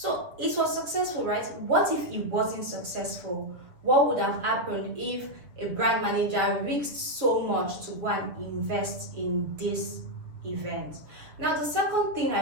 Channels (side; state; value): left; late; 7.4 ms